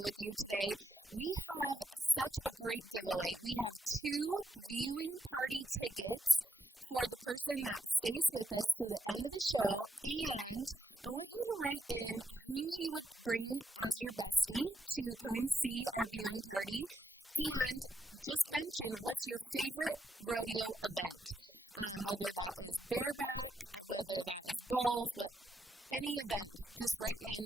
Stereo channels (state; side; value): normal; both; correlation 0.81